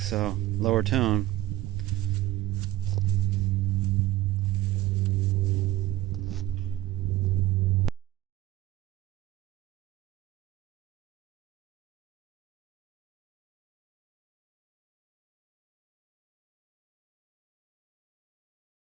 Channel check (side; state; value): left; quieter; 14.9 dB